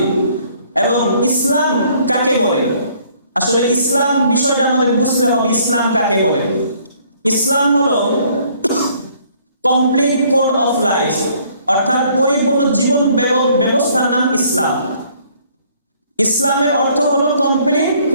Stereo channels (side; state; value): both; inverted; correlation -0.62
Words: এবং ইসলাম কাকে বলে, আসলে ইসলাম বিষয়টা আমাদের বুঝতে হবে। ইসলাম কাকে বলে? ইসলাম হলো কমপ্লিট কোড অফ লাইফ, অর্থাৎ পরিপূর্ণ জীবন ব্যবস্থার নাম ইসলাম। ইসলামের অর্থ হলো কমপ্লিট